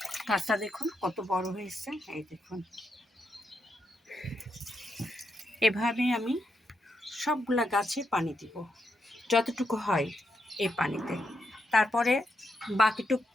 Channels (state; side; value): normal; both; correlation 0.82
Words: গাছটা দেখুন কত বড় হয়েছে। এই দেখুন এভাবে আমি সবগুলা গাছে পানি দিব যতটুকু হয় এই পানিতে। তারপরে বাকিটুক